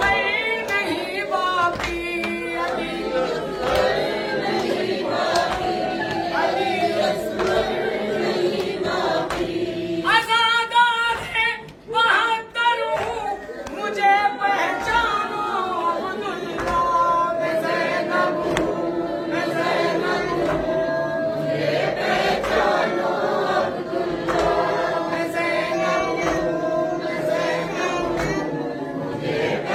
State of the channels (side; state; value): both; identical; correlation 1.00